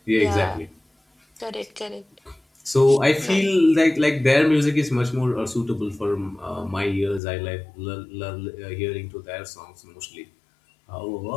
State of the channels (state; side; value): drops out; right; at 7.2 s